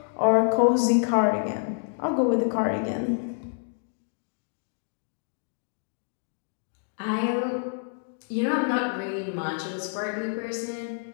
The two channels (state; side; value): silent; right; digital silence